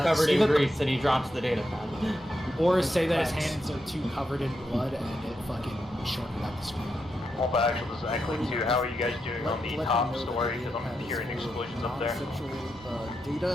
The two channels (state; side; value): normal; both; correlation 0.85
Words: covered in grease and he drops the data pad. Or say that his hands are too covered in blood and it fucking shorted out the screen. Well, but actually, this is Acklay 2. How are you guys doing on the top story? Because I'm hearing explosions up there.